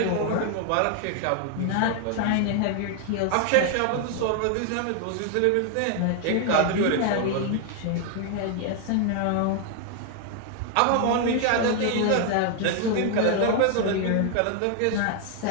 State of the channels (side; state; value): both; different; correlation 0.00